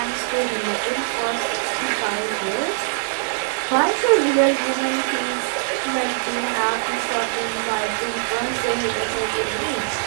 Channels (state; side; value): silent; left; digital silence